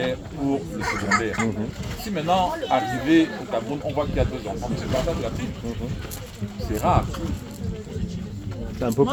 pour le secondaire. Si maintenant, arrivé au Cameroun, on voit qu'il y a 2 enfants, c'est le partage de la ville. C'est rare. Ça ne peut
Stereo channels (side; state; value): both; identical; correlation 1.00